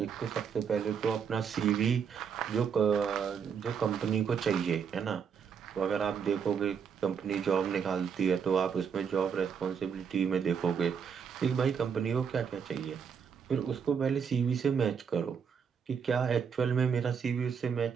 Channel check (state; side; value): quieter; left; 6.8 dB